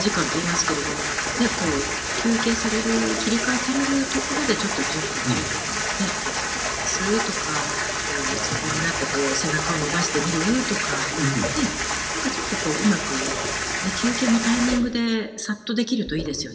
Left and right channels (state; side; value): identical; both; correlation 1.00